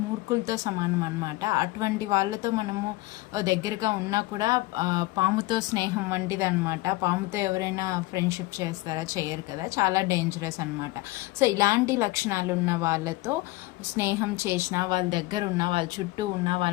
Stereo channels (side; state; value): right; quieter; 20.1 dB